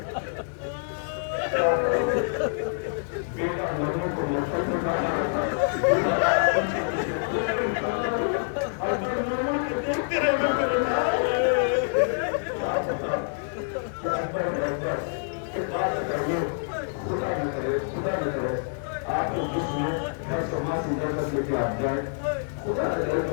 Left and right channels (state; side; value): silent; right; 60 dB below the other